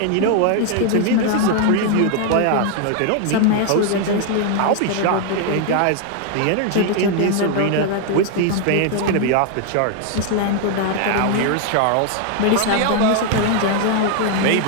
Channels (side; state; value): both; different; correlation 0.00